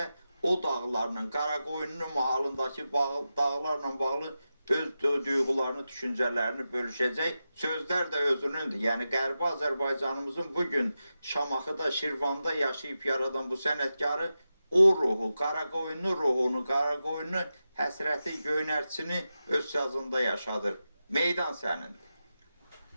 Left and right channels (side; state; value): both; inverted; correlation -0.91